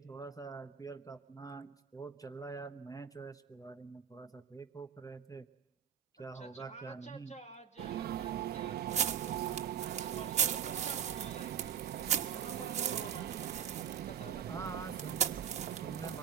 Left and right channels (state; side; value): quieter; left; 8.5 dB